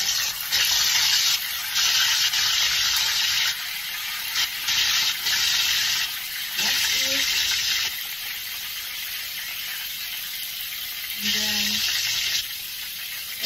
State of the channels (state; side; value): noise; left; rumble, 29 dB below the sound